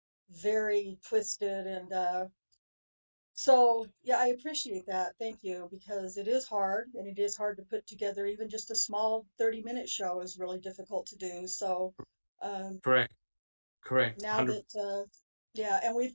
very twisted. And so, yeah, I appreciate that. Thank you, because it is hard, and it is hard to put together. Even just a small 30-minute show is really difficult to do. So, um, correct, correct, now 100. that, yeah, and we've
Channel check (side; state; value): both; inverted; correlation -1.00